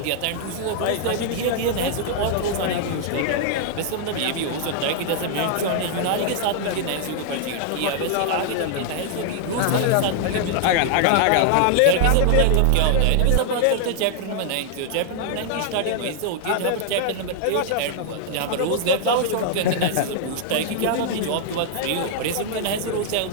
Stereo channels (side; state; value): both; different; correlation 0.00